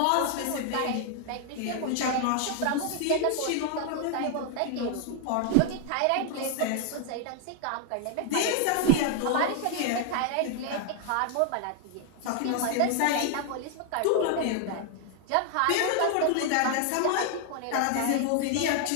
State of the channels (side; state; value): both; different; correlation 0.00